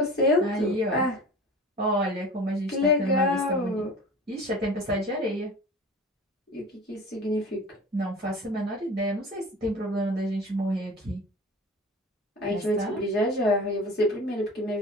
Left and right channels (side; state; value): both; normal; correlation 0.37